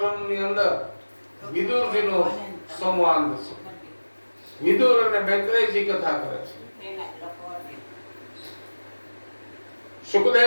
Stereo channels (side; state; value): both; inverted; correlation -1.00